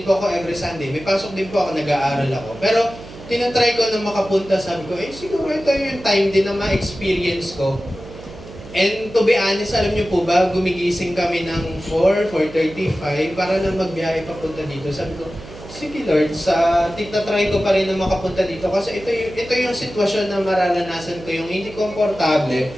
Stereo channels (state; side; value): noise; right; hum, 16 dB below the sound